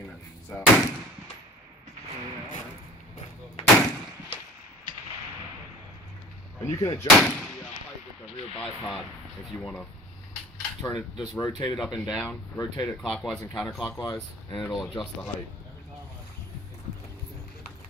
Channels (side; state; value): both; normal; correlation 0.44